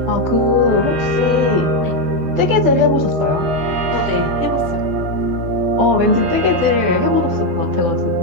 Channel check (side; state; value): left; late; 12 ms